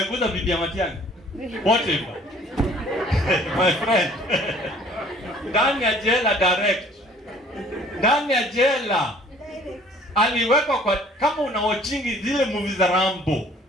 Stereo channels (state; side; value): normal; both; correlation 0.54